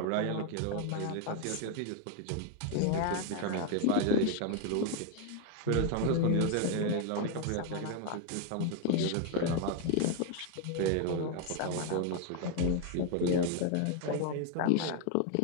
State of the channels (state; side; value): different; both; correlation 0.01